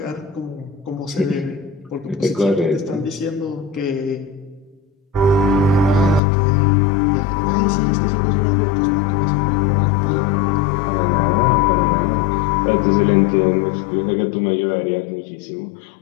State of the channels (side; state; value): right; drops out; at 6.2 s